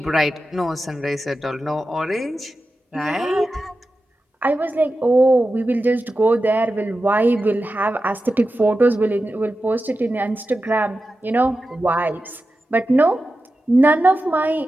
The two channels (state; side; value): normal; both; correlation 0.92